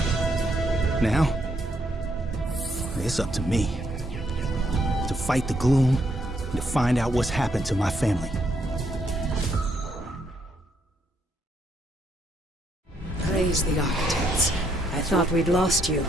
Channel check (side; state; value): both; normal; correlation 0.74